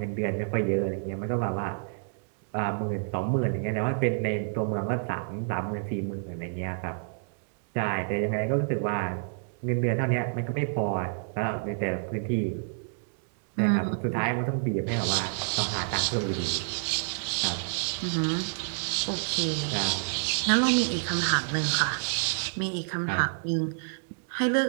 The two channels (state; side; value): silent; left; digital silence